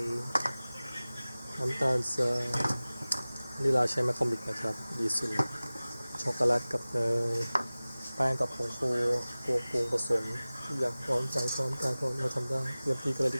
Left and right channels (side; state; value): both; inverted; correlation -0.98